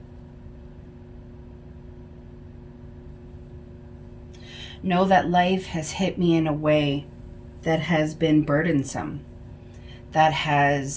Know that life has hit me in a way that has been burdensome, that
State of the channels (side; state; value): both; identical; correlation 1.00